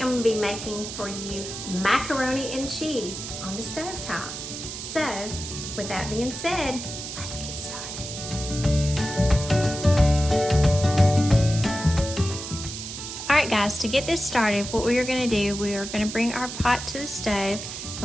going to be making for you macaroni and cheese on the stovetop. So, with that being said, let's get started. Alright guys, to get this started, what we are going to do, we are going to bring our pot to the stove,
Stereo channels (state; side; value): noise; right; hiss, 8 dB below the sound